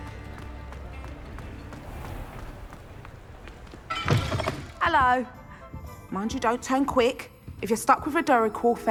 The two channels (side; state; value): both; identical; correlation 1.00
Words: Hello. Mind you, don't turn quick. If you're stuck with a Duracell